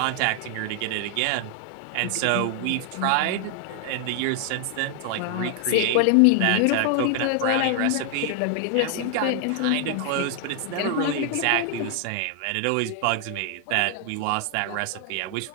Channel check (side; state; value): both; different; correlation 0.00